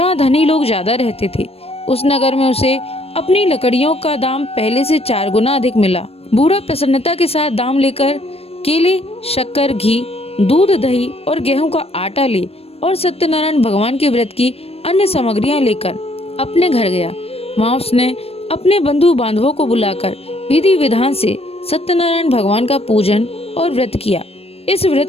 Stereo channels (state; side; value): late; right; 0.28 ms